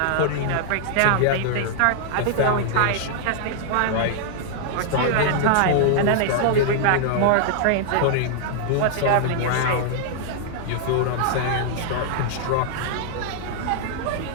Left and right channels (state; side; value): different; both; correlation -0.01